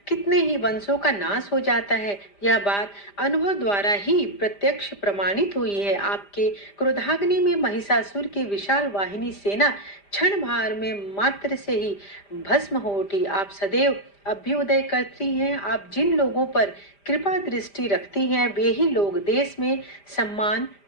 कितने ही वंशों का नाश हो जाता है। यह बात अनुभव द्वारा ही प्रत्यक्ष प्रमाणित हुई है। आपके क्रोधाग्नि में महिषासुर की विशाल वाहिनी सेना क्षण भर में मात्र से ही भस्म हो उठी। आप सदैव अभ्युदय करती हैं। आप जिन लोगों पर कृपा दृष्टि रखती हैं, वे ही लोग देश में सम्मान,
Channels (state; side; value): late; right; 5.0 ms